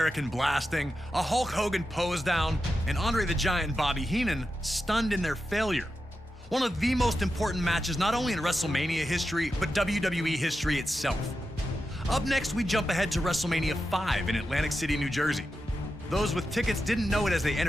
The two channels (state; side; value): normal; both; correlation 0.89